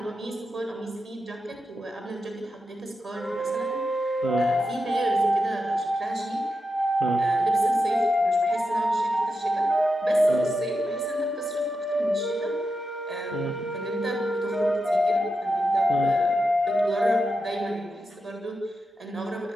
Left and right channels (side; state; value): both; normal; correlation 0.88